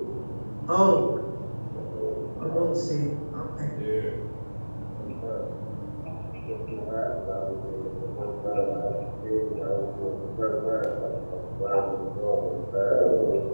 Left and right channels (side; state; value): both; inverted; correlation -1.00